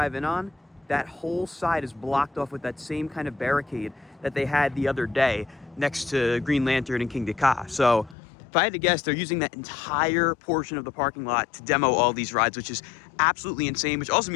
in on, that whole side is blocked off with that same kind of barricade that they had the other day next to Green Lantern and King Dakar. So if I had to guess, they're using that entire portion of the parking lot to demo all these rides, which is absolutely insane, which also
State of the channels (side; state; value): right; drops out; at 8.2 s